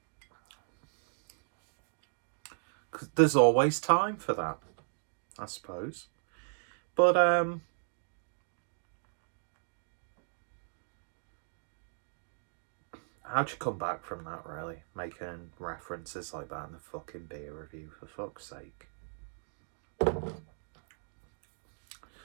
cause there's always time for that, I suppose. But how'd you come back from that, really? Making references like that in the fucking beer review, for fuck's sake.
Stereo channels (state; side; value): silent; left; digital silence